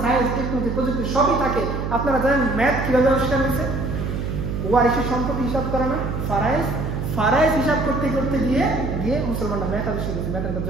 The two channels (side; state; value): right; noise; hum, 3 dB below the sound